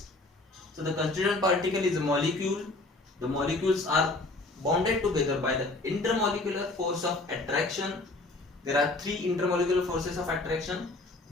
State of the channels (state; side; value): quieter; right; 3.0 dB